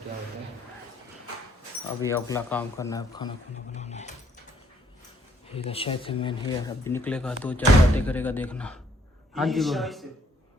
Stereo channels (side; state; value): both; normal; correlation 0.67